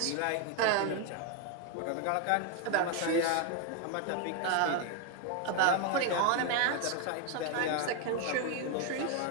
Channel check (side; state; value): both; different; correlation 0.01